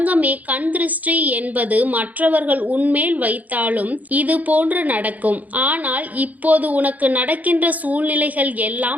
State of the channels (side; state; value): left; late; 0.077 ms